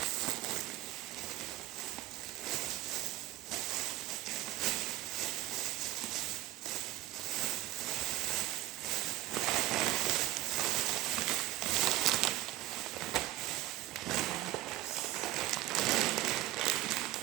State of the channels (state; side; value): quieter; left; 16.4 dB